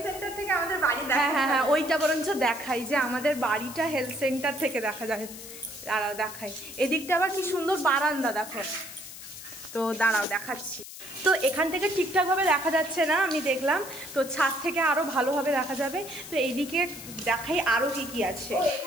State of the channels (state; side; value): noise; left; hiss, 13 dB below the sound